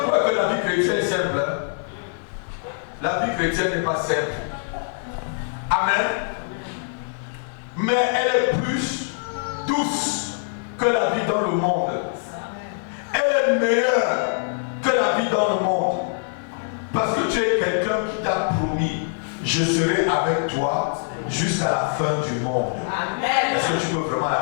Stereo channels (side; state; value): right; silent; 55 dB below the other